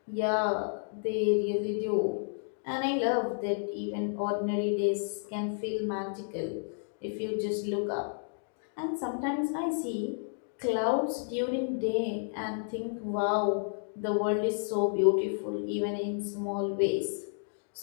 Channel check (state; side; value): silent; right; digital silence